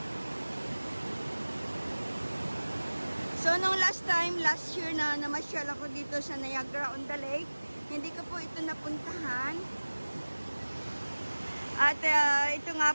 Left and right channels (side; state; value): both; inverted; correlation -1.00